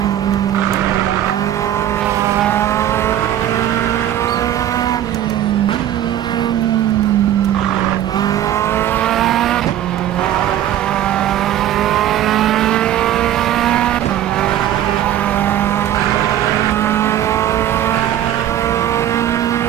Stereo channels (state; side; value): quieter; left; 11.7 dB